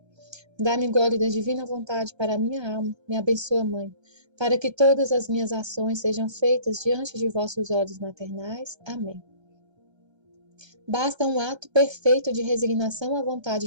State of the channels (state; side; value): late; left; 1.3 ms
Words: Dá-me gole da divina vontade para a minha alma. Me abençoa, Mãe, para que todas as minhas ações sejam feitas diante de vossos olhos maternais. Amém. Basta um ato perfeito de resignação à